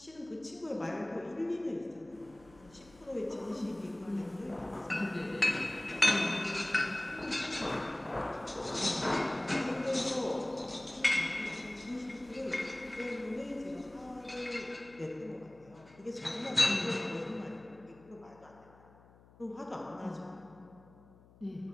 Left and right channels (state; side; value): noise; left; hum, 25 dB below the sound